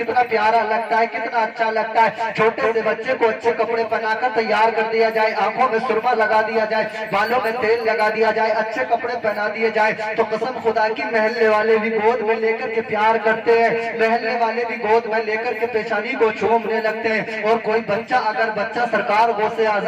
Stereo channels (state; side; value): identical; both; correlation 1.00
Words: प्यारा लगता है, कितना अच्छा लगता है। छोटे से बच्चे को अच्छे कपड़े पहनाकर तैयार कर दिया जाए, आंखों में सुरमा लगा दिया जाए, बालों में तेल लगा दिया जाए, अच्छे कपड़े पहना दिए जाए, तो कसम खुदा की महल्ले वाले भी गोद में लेकर के प्यार करते हैं, महल्ले वाले भी गोद में लेकर के पेशानी को चूमने लगते हैं। और कोई बच्चा, अगर बच्चा सरकार गौसे